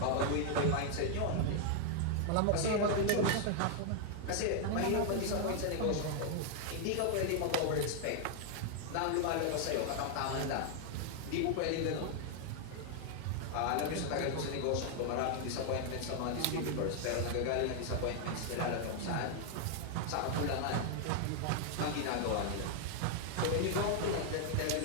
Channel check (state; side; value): different; both; correlation 0.00